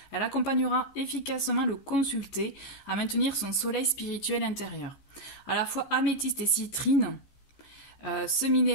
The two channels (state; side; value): late; right; 15 ms